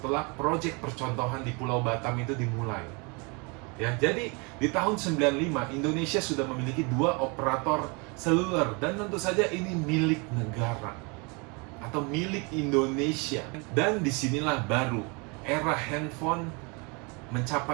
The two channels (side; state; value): left; quieter; 30.8 dB